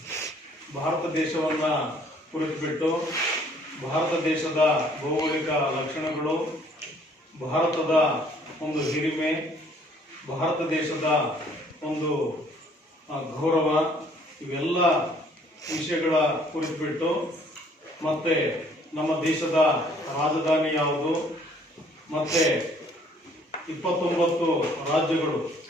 ಭಾರತ ದೇಶವನ್ನ ಕುರಿತುಬಿಟ್ಟು ಭಾರತ ದೇಶದ ಭೌಗೋಳಿಕ ಲಕ್ಷಣಗಳು, ಭಾರತದ ಒಂದು ಹಿರಿಮೆ, ಭಾರತ ದೇಶದ ಒಂದು ಗೌರವ, ಇವೆಲ್ಲ ವಿಷಯಗಳ ಕುರಿತುಬಿಟ್ಟು ಮತ್ತೆ ನಮ್ಮ ದೇಶದ ರಾಜಧಾನಿ ಯಾವುದು, ಮತ್ತೆ 29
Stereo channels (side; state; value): both; normal; correlation 0.60